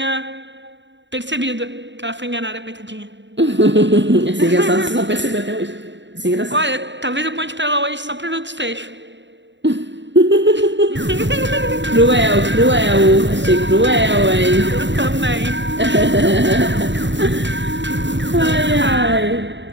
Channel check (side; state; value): left; late; 0.53 ms